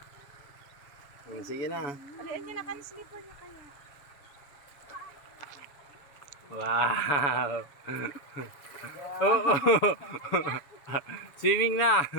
Sige na. Alian niyo na kan slipper niya kaya. Wow. Oo. Swimming na.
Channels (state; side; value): late; right; 7.0 ms